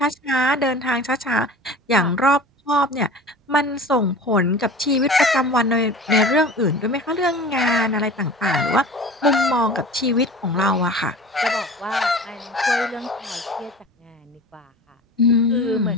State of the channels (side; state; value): both; normal; correlation 0.38